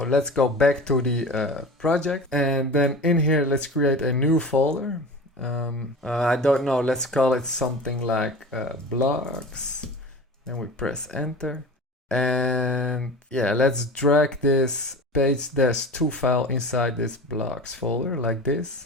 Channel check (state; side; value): normal; both; correlation 0.34